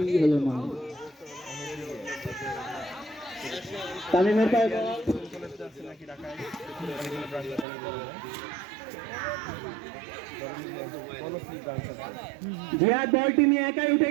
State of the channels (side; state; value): left; drops out; at 7.7 s